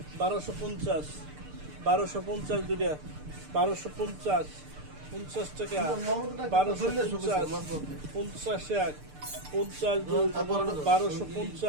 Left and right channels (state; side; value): late; left; 6.7 ms